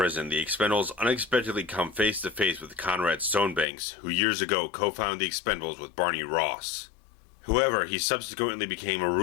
the Expendables unexpectedly come face to face with Conrad Stonebanks, who years ago co-founded the Expendables with Barney Ross. However, he subsequently became a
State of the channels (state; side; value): drops out; right; at 3.7 s